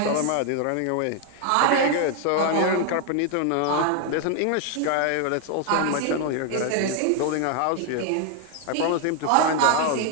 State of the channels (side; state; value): both; different; correlation 0.00